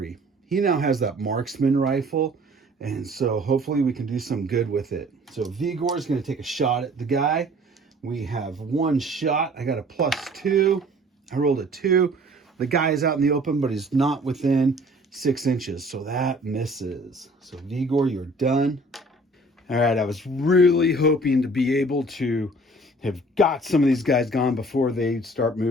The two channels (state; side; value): normal; both; correlation 0.52